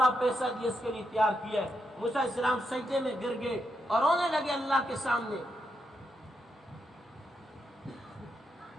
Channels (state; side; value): normal; both; correlation 0.82